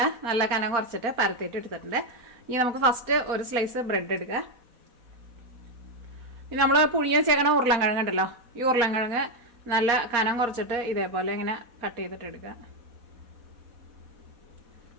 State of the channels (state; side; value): late; left; 4.3 ms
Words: നല്ല കനം കുറച്ചിട്ട് പരത്തിയിട്ട് എടുത്തിട്ടുണ്ട്. ഇനി നമുക്ക് ഫസ്റ്റ് ഒരു സ്ലൈസ് ബ്രെഡ് എടുക്കുക. ഇനി നമ്മൾ പുഴുങ്ങി വെച്ചേക്കണ ഉരുളൻകിഴങ്ങ് ഉണ്ടല്ലോ, ഈ ഉരുളൻകിഴങ്ങ് നല്ല കനം കുറച്ചിട്ട് ഇതേപോലെ ഇങ്ങനെ കട്ട് ചെയ്തിട്ട് എടുക്കുക.